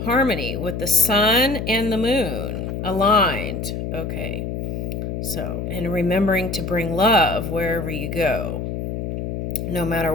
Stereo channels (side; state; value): left; noise; hum, 4 dB below the sound